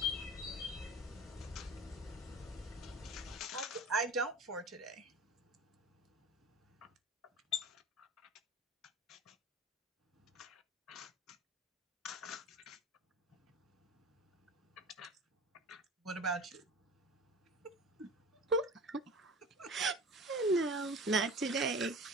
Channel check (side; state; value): both; normal; correlation 0.37